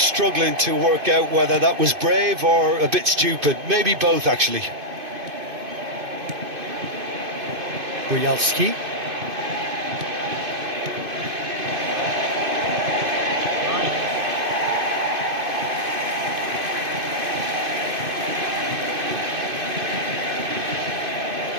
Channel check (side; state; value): left; late; 2.5 ms